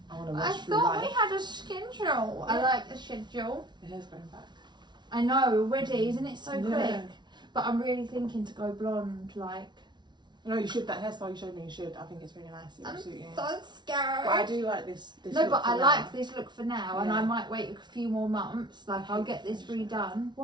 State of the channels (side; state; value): left; late; 0.21 ms